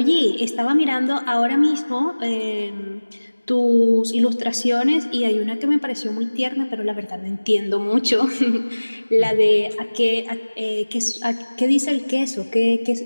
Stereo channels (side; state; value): both; inverted; correlation -1.00